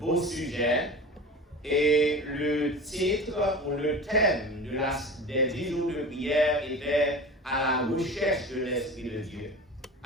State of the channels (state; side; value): normal; both; correlation 0.34